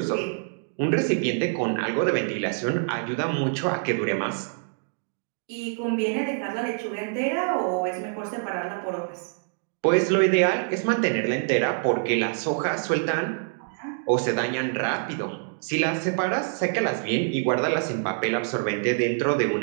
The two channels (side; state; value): left; silent; 61 dB below the other